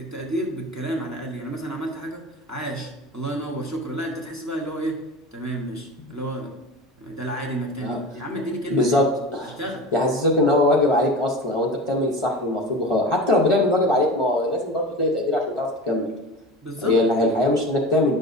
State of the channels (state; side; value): normal; both; correlation 0.32